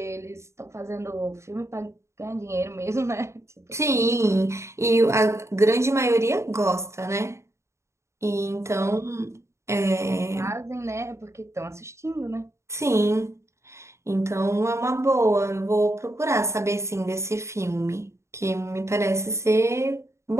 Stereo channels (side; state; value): left; late; 0.14 ms